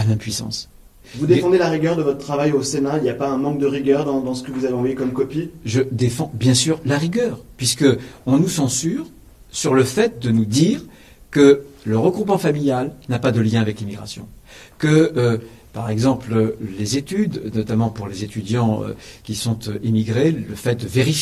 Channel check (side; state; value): both; identical; correlation 1.00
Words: l'impuissance. Vous défendez la rigueur de votre travail au Sénat. Il n'y a pas un manque de rigueur dans ce que vous avez envoyé comme copie ? Je défends bien sûr la rigueur, puisqu'on nous censure sur le fait de nous dire que le regroupement familial n'a pas de lien avec l'immigration, que par exemple, les études, notamment pour les étudiants qui sont immigrés, le fait de